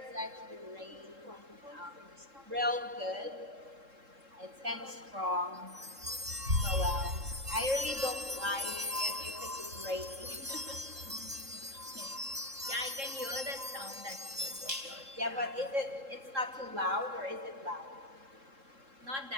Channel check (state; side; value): late; left; 3.7 ms